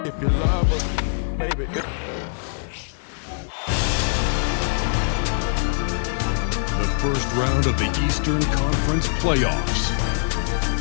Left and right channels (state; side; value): silent; right; digital silence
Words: If you love her, baby. The first round of the Eastern Conference playoffs.